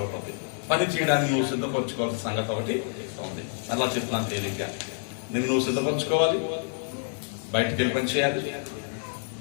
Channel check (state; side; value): silent; right; digital silence